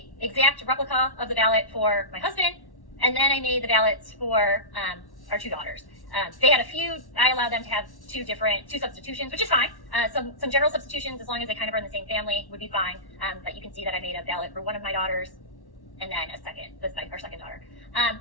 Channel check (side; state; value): right; late; 1.1 ms